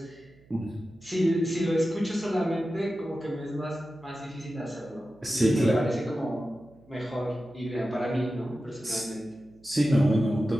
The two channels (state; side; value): noise; right; hum, 27 dB below the sound